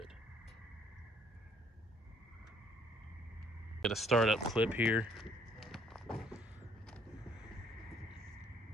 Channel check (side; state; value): both; normal; correlation 0.63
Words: Get a startup clip here.